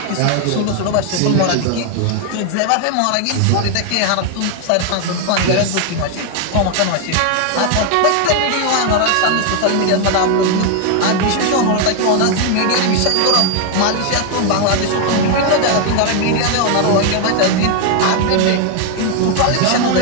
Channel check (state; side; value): different; both; correlation 0.01